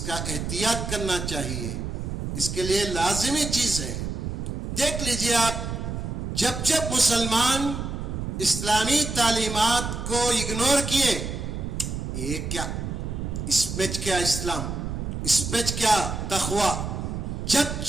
एहतियात करना चाहिए, इसके लिए लाजिमी चीज है। देख लीजिए आप, जब जब मुसलमान इस्लामी तालीमात को इग्नोर किए, ये क्या, इसमें क्या इस्लाम, इसमें क्या तक़वा, जब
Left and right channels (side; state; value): right; noise; rumble, 4 dB below the sound